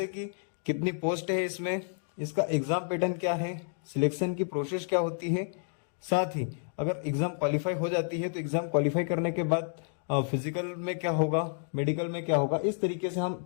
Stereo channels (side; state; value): right; silent; 58 dB below the other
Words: कि कितनी पोस्ट है इसमें, इसका एग्जाम पैटर्न क्या है, सिलेक्शन की प्रोसेस क्या होती है। साथ ही अगर एग्जाम क्वालिफाई हो जाती है तो एग्जाम क्वालिफाई करने के बाद फिजिकल में क्या होगा, मेडिकल में क्या होगा, इस तरीके से हम